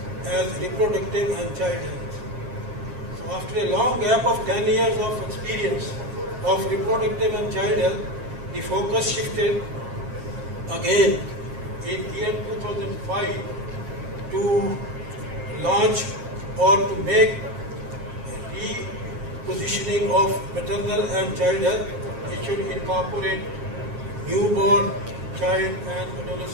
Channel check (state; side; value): late; left; 7.5 ms